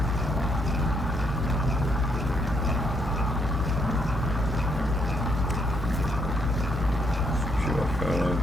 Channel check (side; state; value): both; normal; correlation 0.73